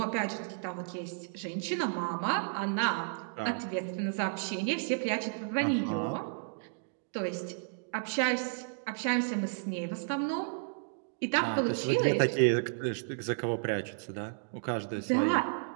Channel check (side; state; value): left; silent; digital silence